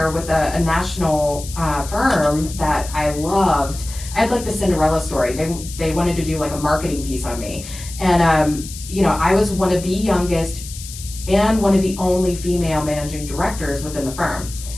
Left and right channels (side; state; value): left; noise; hiss, 13 dB below the sound